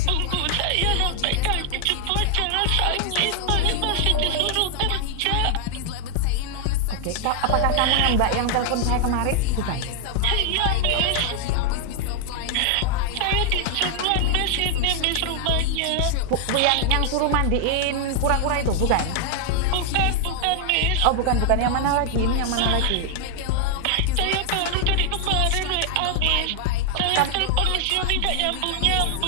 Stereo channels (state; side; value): different; both; correlation 0.00